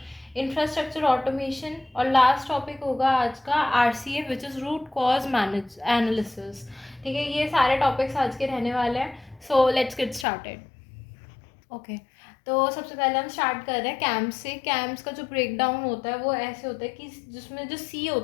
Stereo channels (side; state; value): right; drops out; at 10.2 s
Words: इंफ्रास्ट्रक्चर ऑटोमेशन, और लास्ट टॉपिक होगा आज का RCA, which is root cause manage analysis. ठीक है, ये सारे टॉपिक्स आज के रहने वाले हैं। So let's get started. Okay, तो सबसे पहले हम स्टार्ट कर रहे हैं कैम्प से। कैम्प्स का जो ब्रेक डाउन होता है वो ऐसे होता है कि जिसमें जो सी